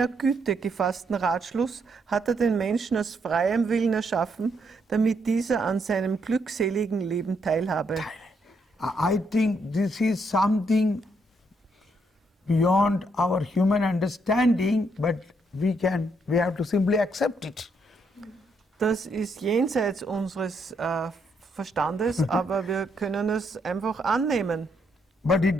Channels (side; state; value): both; normal; correlation 0.75